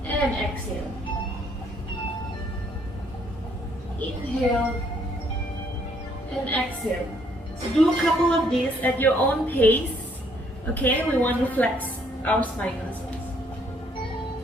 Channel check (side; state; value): both; normal; correlation 0.67